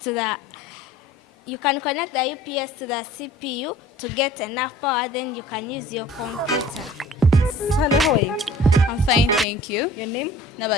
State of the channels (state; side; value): normal; both; correlation 0.49